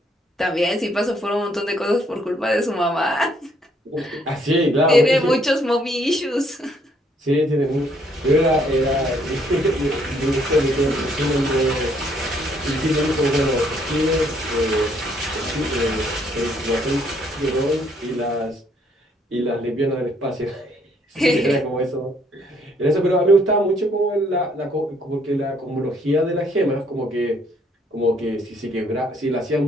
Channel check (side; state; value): both; normal; correlation 0.67